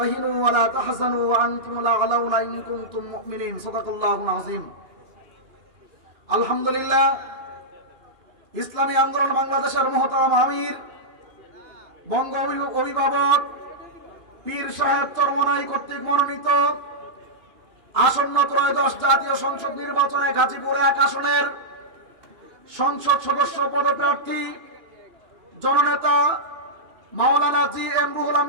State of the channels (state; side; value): late; left; 2.6 ms